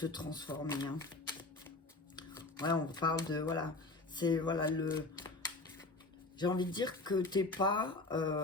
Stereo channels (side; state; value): right; quieter; 3.2 dB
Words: transformer. Hein. Ouais, on parle de, voilà, c'est, voilà, le... J'ai envie de dire que t'es pas